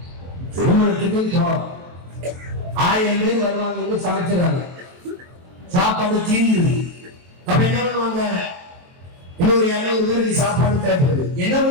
திருமணத்துக்கு 1000 பேர் வருவாங்க, சமைச்சிடறாங்க, சாப்பாடு தீர்ந்து. அப்ப என்ன பண்ணுவாங்க? இன்னொரு 200 பேருக்கு சாப்பாடு தேவைப்படுது. என்ன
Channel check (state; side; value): late; left; 23 ms